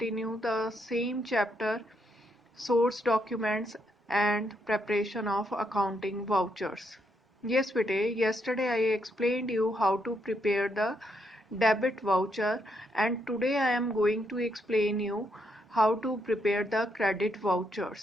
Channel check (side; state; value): both; normal; correlation 0.77